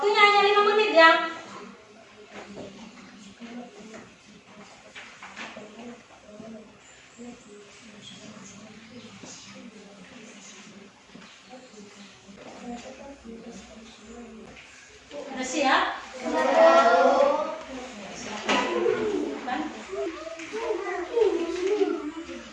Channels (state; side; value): identical; both; correlation 1.00